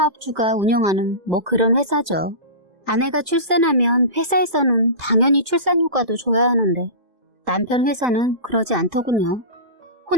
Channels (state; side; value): late; left; 2.0 ms